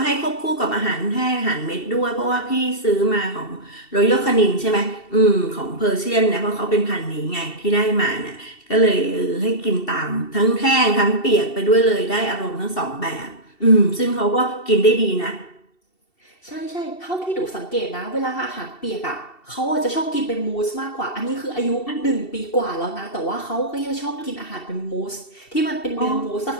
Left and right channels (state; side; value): late; right; 2.7 ms